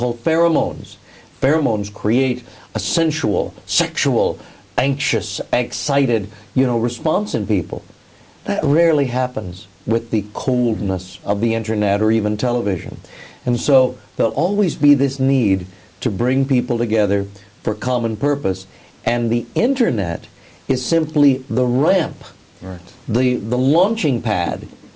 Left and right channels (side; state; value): both; identical; correlation 1.00